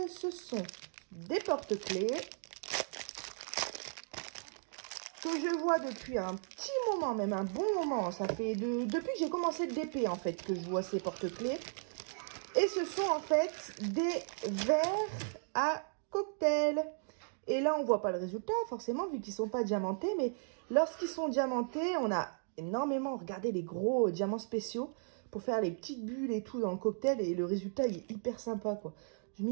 ce sont des porte-clés que je vois depuis un petit moment, même un bon moment. Ça fait depuis que j'ai commencé le DP, en fait, que je vois ces porte-clés. Et ce sont, en fait, des verres à cocktail. Et là, on voit pas le résultat, forcément, vu qu'ils sont pas diamantés. Mais lorsqu'ils sont diamantés, on a énormément regardé les gros diamants spéciaux pour faire les petites bulles et tout dans le cocktail. Et le résultat, il est hyper sympa, quoi. Je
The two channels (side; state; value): left; silent; digital silence